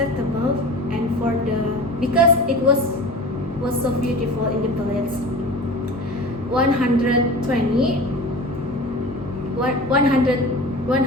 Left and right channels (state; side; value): normal; both; correlation 0.36